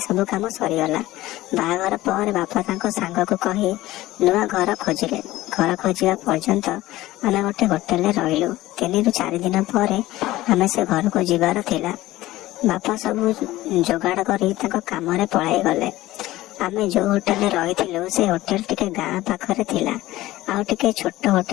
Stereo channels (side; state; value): right; quieter; 16.9 dB